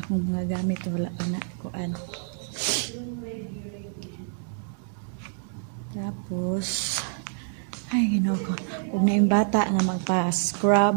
mga gamit wala pa na kuan. Tapos ay ginoo ko ug na yung bata nga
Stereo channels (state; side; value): silent; left; digital silence